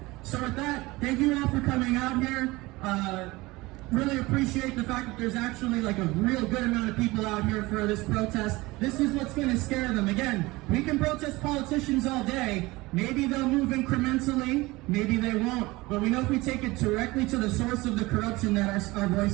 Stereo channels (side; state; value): left; quieter; 21.2 dB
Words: So with that, thank you all for coming out here. Really appreciate the fact that there's actually like a real good amount of people out here for this protest. This is what's going to scare them. Again, we can protest politicians all day. Maybe they'll move incrementally, maybe they won't. But we know if we take it directly to the source of the corruption that our